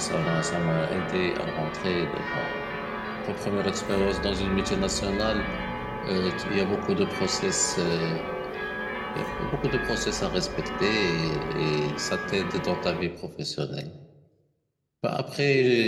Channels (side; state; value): both; identical; correlation 1.00